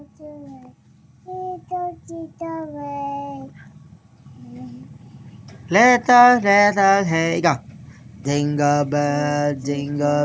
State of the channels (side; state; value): both; identical; correlation 1.00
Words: Little, hey, go. Jingle bell,